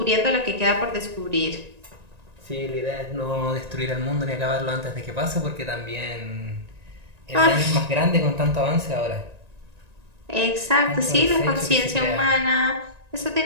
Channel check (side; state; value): left; late; 1.9 ms